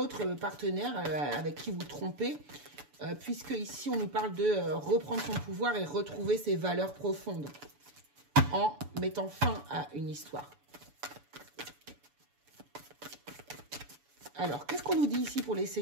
partenaire avec qui vous trompez, puisque ici, on nous parle de reprendre son pouvoir et retrouver ses valeurs profondes en mettant fin à une histoire. Alors, qu'est-ce qu'on nous dit ici pour les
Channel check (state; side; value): late; left; 7.0 ms